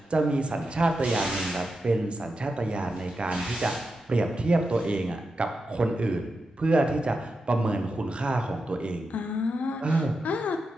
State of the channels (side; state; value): both; normal; correlation 0.88